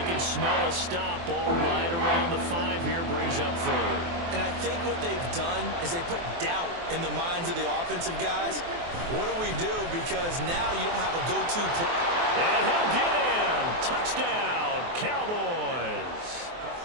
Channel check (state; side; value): late; left; 24 ms